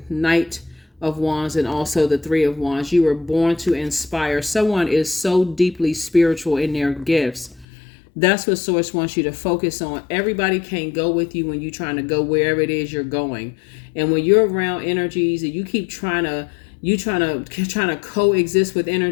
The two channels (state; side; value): drops out; right; at 7.7 s